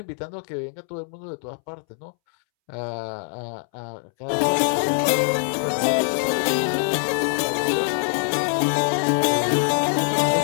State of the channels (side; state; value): right; silent; 63 dB below the other